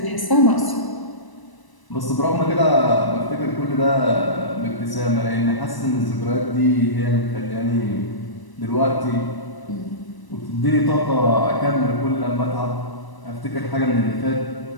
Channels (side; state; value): right; late; 1.0 ms